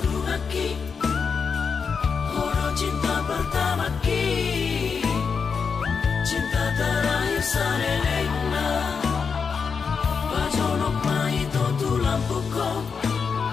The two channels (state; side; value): quieter; right; 5.7 dB